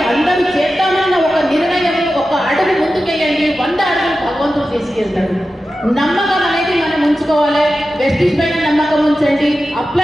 అందరూ చేద్దామన్న ఒక నిర్ణయం, ఒక అడుగు ముందుకెళ్ళండి. 100 అడుగులు భగవంతుడు తీసుకెళ్తాడు. నమ్మకం అనేది మనం ఉంచుకోవాలి. వెస్టిజ్ పైన నమ్మకం ఉంచండి,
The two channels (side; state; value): both; normal; correlation 0.93